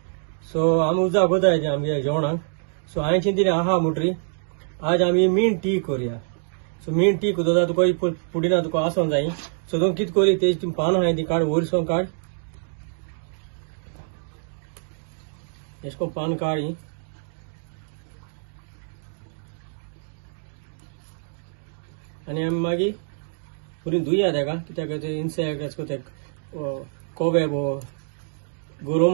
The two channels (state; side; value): silent; left; digital silence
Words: सो आमी उजा कोताय आमगे जेवणाक. सो हांवें दिलें आहा मुटरी आज आमी मिंट टी करुया. सो मिंट टी कोता तुका ही पुदीना तुका आसोंक जाय. सो तूं कितें करी तेजी पानां आहाय ती काड वयरसोन काड. एशको पान काडी आनी आमी मागीर बरी धुया तेका कित्याक ते इन्सेक्ट एशको ते कोबे वो